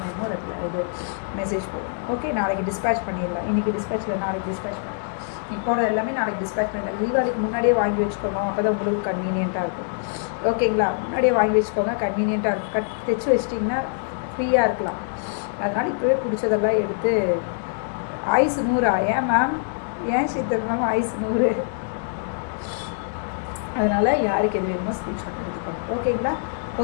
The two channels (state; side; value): silent; right; digital silence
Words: வேணுமோ இது மெசேஜ் போடுங்க ஓகே நாளைக்கு டிஸ்பேச் பண்ணிடலாம் இன்றைக்கி டிஸ்பேச் இல்லை நாளைக்கு டிஸ்பேச் பண்ணலாம் இப்போட எல்லாமே நாளைக்கு டிஸ்பேச் பண்ணிடலாம் தீபாவளிக்கு முன்னாடியே வாங்கி வச்சுக்கோங்க அப்போ தான் உங்களுக்கு கன்வீனியண்ட்டாக இருக்கும் ஓகேங்களா முன்னாடியே வாங்கி வச்சுக்கோங்க கன்வீனியண்ட்டாக இருக்கும் தைச்சி வச்சிட்டிங்கன்னா ஃப்ரீயாக இருக்கலாம் அதனால் இப்போவே பிடிச்சதெல்லாம் எடுத்து ஐஸ் 100 ஏன் மேம் ஏன் சித்தம் ஐஸ் 100 அதனால் யாருக்கு எது வேணுமோ ஸ்க்ரீன்ஷாட் எடுத்துக்கோங்க ஓகேங்களா